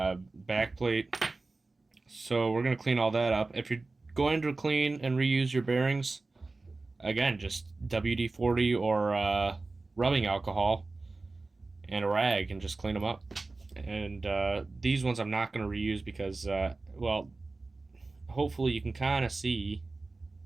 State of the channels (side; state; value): left; quieter; 3.5 dB